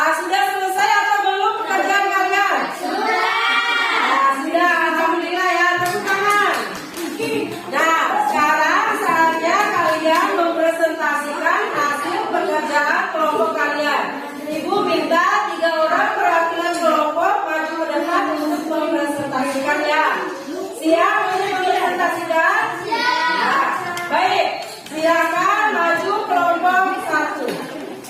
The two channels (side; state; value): both; identical; correlation 1.00